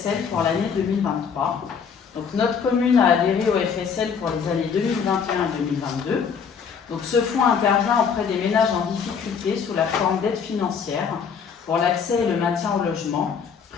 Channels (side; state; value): right; quieter; 6.5 dB